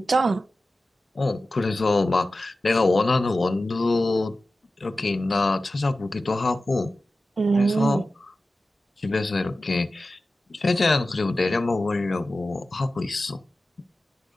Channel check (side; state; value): both; normal; correlation 0.95